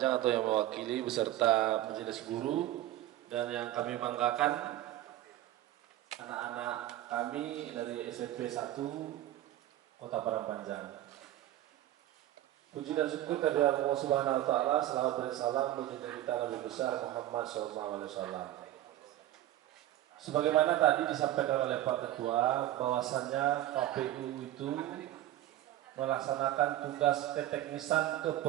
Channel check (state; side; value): quieter; left; 14.0 dB